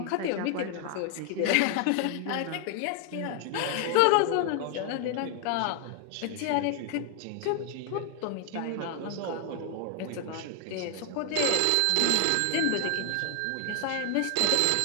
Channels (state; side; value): different; both; correlation 0.00